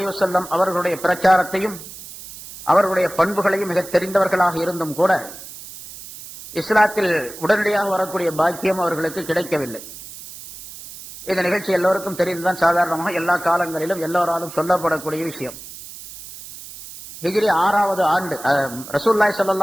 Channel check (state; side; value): noise; right; hiss, 14 dB below the sound